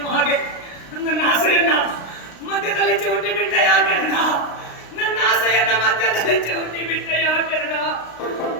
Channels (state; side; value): late; right; 35 ms